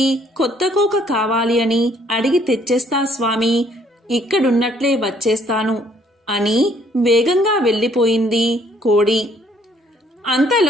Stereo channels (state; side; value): normal; both; correlation 0.64